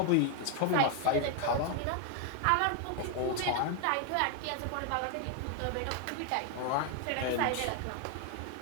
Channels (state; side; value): different; both; correlation 0.01